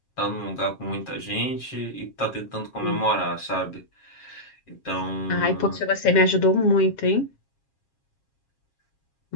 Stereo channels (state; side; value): late; right; 7.4 ms